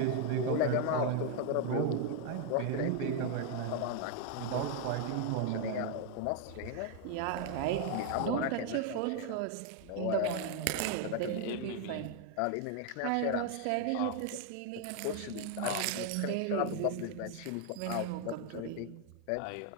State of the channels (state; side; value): different; both; correlation 0.00